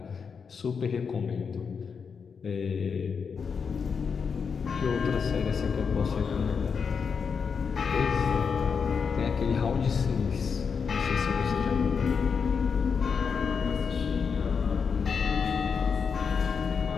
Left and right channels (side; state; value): right; quieter; 6.0 dB